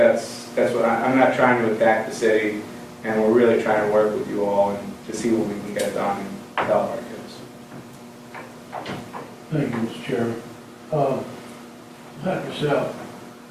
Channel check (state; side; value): identical; both; correlation 1.00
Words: what I'm not trying to attack the city, and we're really trying to work with you all and to see what we can get done and help our kids. Thank you, Mr. Chairman. Dr. Sal,